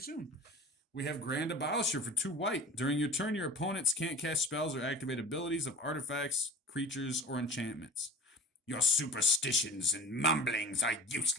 We have Grand Abolisher for 2 white. During your turn, your opponents can't cast spells or activate abilities of artifacts, creatures, or enchantments. Your superstitions and mumblings are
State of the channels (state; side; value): normal; both; correlation 0.39